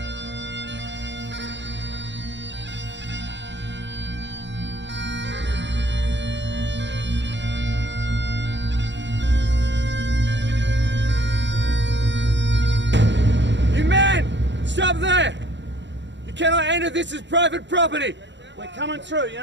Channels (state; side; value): late; left; 0.52 ms